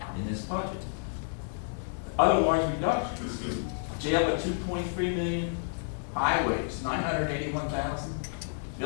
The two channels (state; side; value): silent; right; digital silence